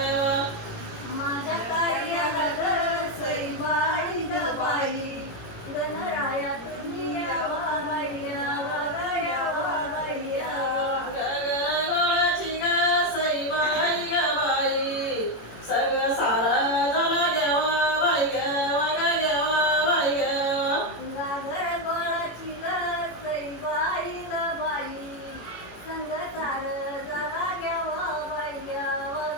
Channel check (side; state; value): right; late; 18 ms